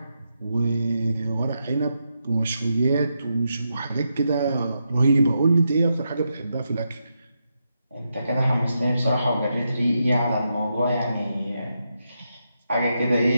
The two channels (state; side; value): inverted; both; correlation -0.84